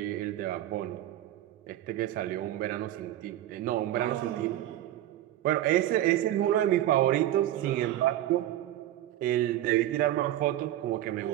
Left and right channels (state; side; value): quieter; left; 13.5 dB